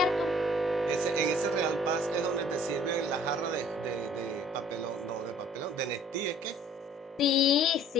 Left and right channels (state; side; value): normal; both; correlation 0.55